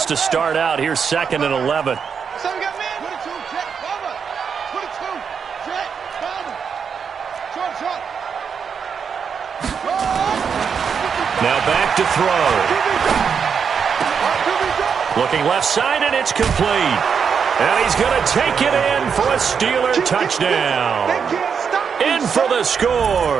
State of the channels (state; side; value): quieter; left; 6.6 dB